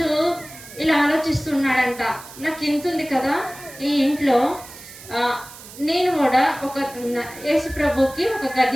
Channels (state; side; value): noise; right; hiss, 17 dB below the sound